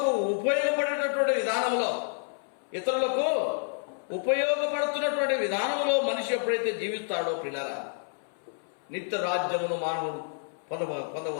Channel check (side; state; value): right; silent; 59 dB below the other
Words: ఉపయోగపడుతున్నటువంటి విధానంలో మనిషి ఎప్పుడైతే జీవిస్తాడో పిల్లల నిత్య రాజ్యమును మానవుడు